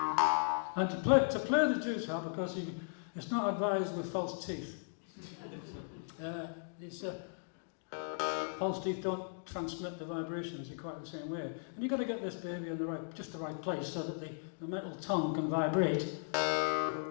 And to play the Jews harp, because it's not advised with false teeth. False teeth don't transmit the vibrations in quite the same way. And you've got to get this baby in the right place so that the metal tongue can vibrate.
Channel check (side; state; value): right; silent; digital silence